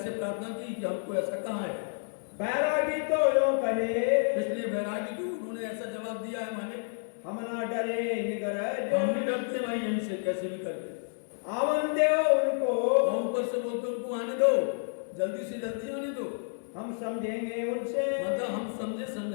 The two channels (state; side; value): silent; right; digital silence